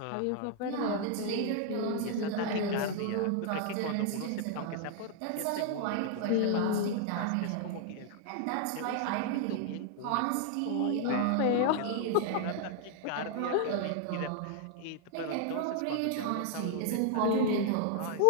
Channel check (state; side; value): different; both; correlation 0.00